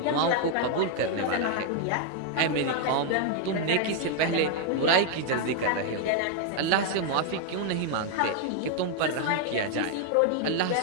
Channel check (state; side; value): different; both; correlation 0.00